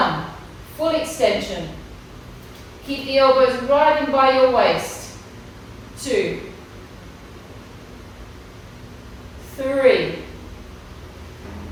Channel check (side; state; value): both; identical; correlation 1.00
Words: Full extension. Keep the elbows right in by your waist. 2, 3,